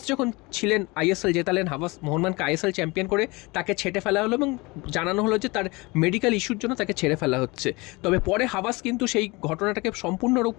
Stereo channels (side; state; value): right; quieter; 24.8 dB